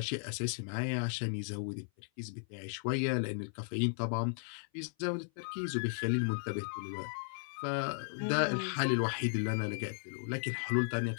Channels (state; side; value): silent; right; 54 dB below the other